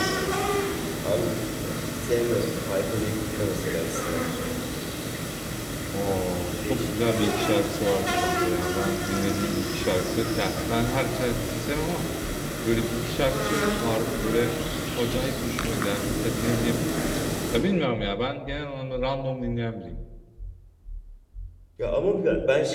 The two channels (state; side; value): identical; both; correlation 1.00